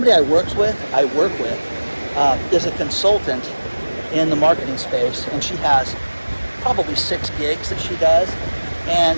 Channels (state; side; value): inverted; both; correlation -1.00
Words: I work with is a consultant in the marketing space, and she has probably 6 gigs that she does.